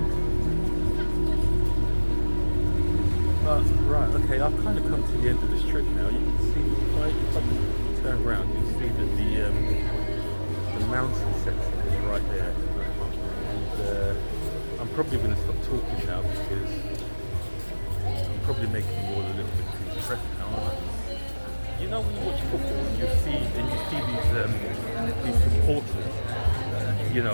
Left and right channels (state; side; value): inverted; both; correlation -1.00